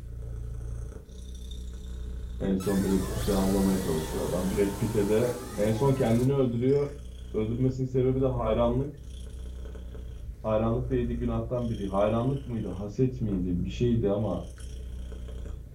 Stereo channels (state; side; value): identical; both; correlation 1.00